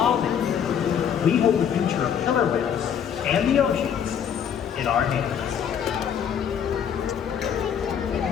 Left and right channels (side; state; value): right; quieter; 8.3 dB